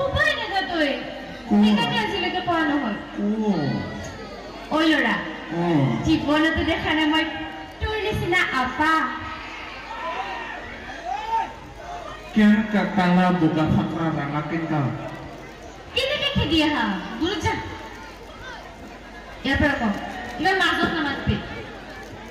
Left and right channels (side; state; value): both; identical; correlation 1.00